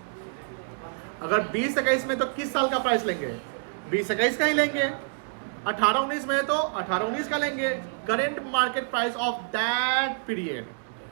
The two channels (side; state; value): left; silent; 60 dB below the other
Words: अगर 20-21 में तो किस साल का प्राइस लेंगे? 20-21 का ही लेंगे। 18-19 में है तो 18-19 का लेंगे। Current market price of that period,